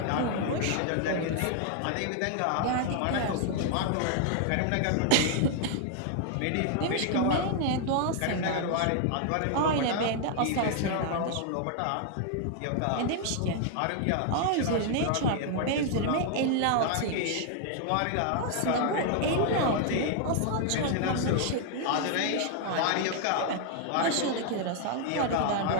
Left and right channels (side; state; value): both; different; correlation 0.00